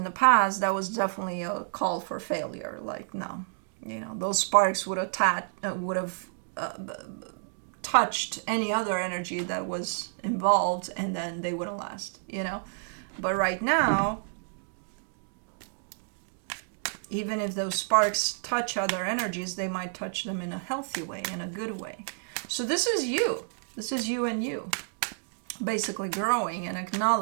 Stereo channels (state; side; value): silent; left; digital silence